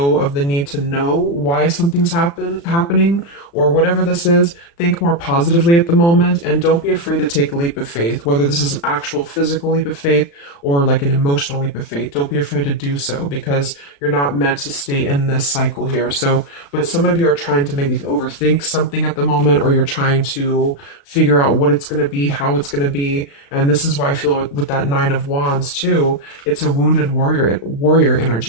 of the need to know why something's happening or whatever this is. Think more positively at the moment and don't be afraid to take a leap of faith, whether this is an actual physical leap of faith or like an emotional leap of faith. Don't be afraid to do so because you're not meant to stay in this cycle here. So, but some of you are trying to maybe overthink something at the moment, or you're trying to figure out what it's going to be, how it's going to be. And this is why I feel with that Nine of Wands too, it's a wounded warrior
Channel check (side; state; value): right; late; 35 ms